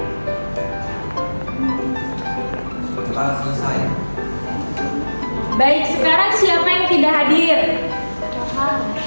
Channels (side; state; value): both; inverted; correlation -1.00